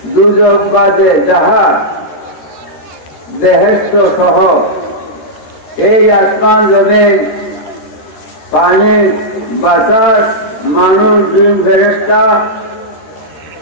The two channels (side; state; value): right; late; 13 ms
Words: দুজক বাদে যাহা বেহেশত সহ এই আসমান জমিন, পানি, বাতাস, মানুষ, জিন, ফেরেশতা